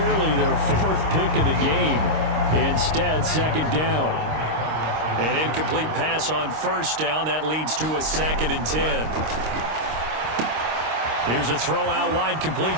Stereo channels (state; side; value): late; left; 26 ms